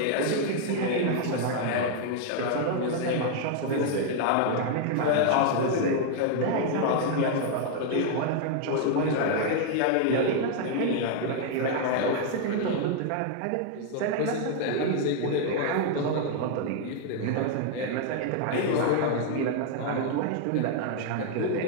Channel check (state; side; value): different; both; correlation 0.00